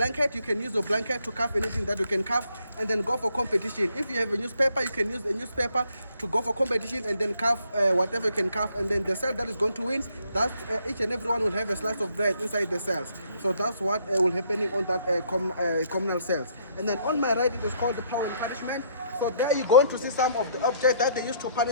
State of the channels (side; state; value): both; inverted; correlation -0.68